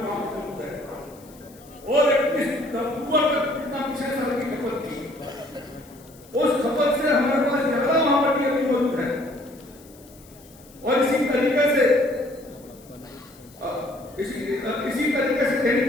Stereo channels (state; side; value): noise; left; hiss, 25 dB below the sound